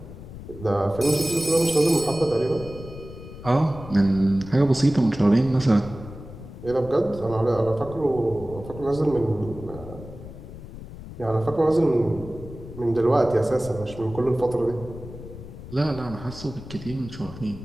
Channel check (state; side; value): noise; left; rumble, 14 dB below the sound